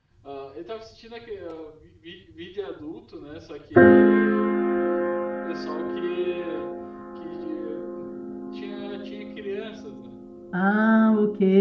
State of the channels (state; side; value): identical; both; correlation 1.00